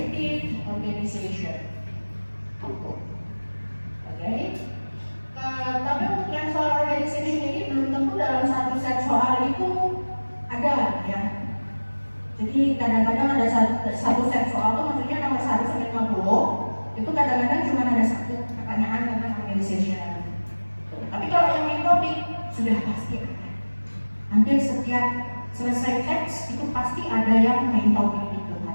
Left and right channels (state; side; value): inverted; both; correlation -1.00